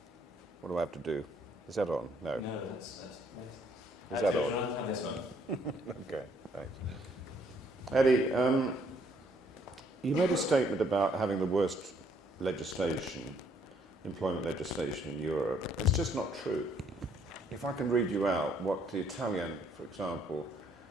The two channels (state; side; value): normal; both; correlation 0.67